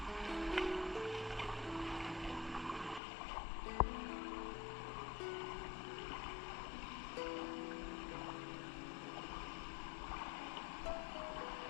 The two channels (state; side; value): drops out; right; at 3.0 s